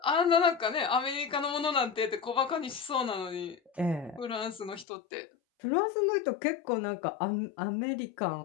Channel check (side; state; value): right; drops out; at 4.9 s